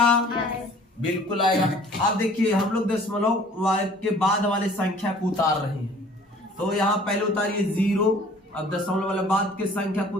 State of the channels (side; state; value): both; normal; correlation 0.52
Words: बिल्कुल आएगा। अब देखिए हम लोग दशमलव के बाद वाले संख्या को उतार रहे हैं। तो यहाँ पहले उतारिए 0, अब दशमलव वाले बाद के संख्या को